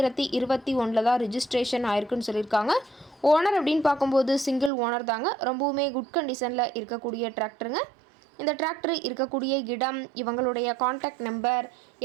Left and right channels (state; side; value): drops out; left; at 4.7 s